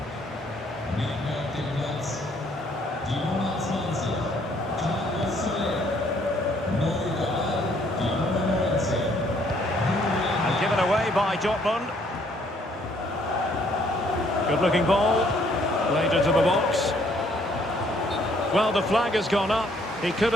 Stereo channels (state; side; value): normal; both; correlation 0.65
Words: And given away by Dortmund. Good looking ball. Played into the box. Well, the flag has gone up. He could